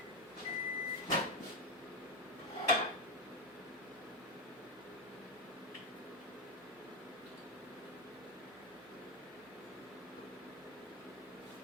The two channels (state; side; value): normal; both; correlation 0.12